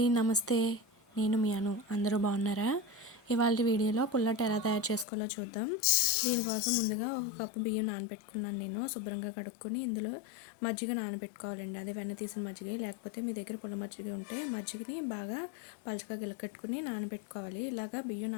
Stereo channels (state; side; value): drops out; right; at 5.1 s